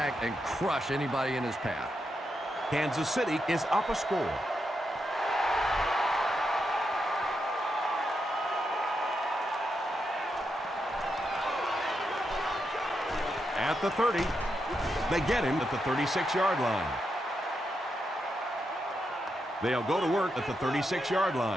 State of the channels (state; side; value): normal; both; correlation 0.84